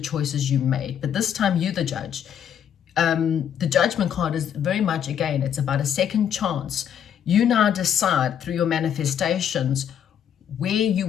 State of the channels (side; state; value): right; quieter; 9.0 dB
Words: you made. But this time, you're the judge. The judgment card is very much, again, it's about a second chance. You now decide through your manifestations where you